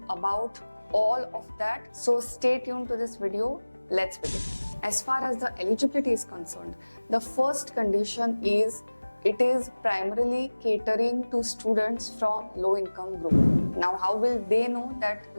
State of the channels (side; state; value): both; inverted; correlation -1.00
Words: about all of that. So stay tuned to this video. Let's begin. As far as the eligibility is concerned, the first condition is it is primarily catering to students from low income group. Now, how will they know that